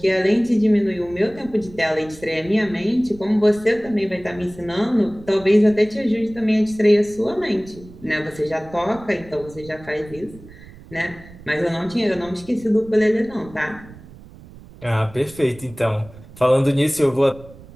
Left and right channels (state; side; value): noise; right; rumble, 20 dB below the sound